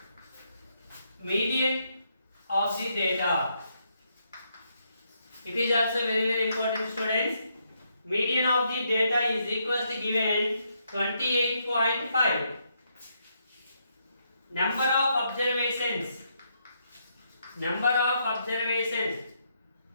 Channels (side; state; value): both; inverted; correlation -0.77